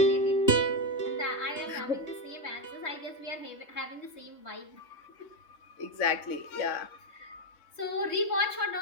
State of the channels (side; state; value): right; late; 3.2 ms